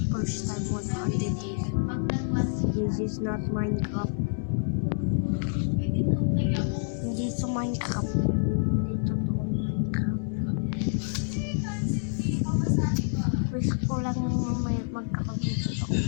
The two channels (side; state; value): right; silent; 60 dB below the other